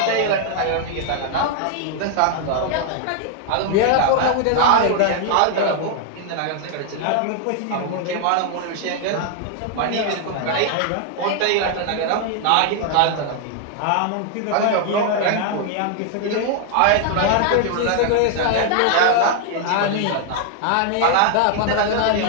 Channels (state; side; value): different; both; correlation 0.00